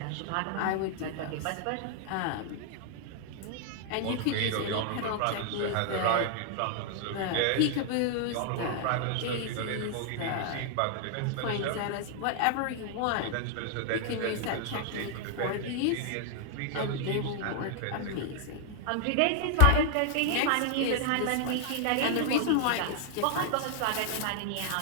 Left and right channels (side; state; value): both; different; correlation 0.00